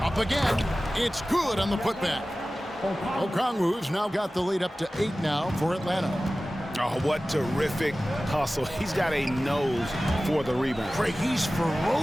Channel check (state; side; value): normal; both; correlation 0.96